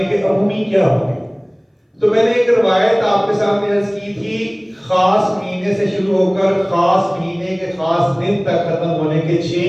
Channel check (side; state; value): both; identical; correlation 1.00